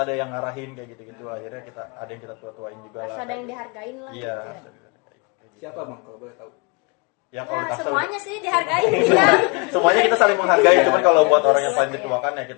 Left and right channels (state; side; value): quieter; right; 30.8 dB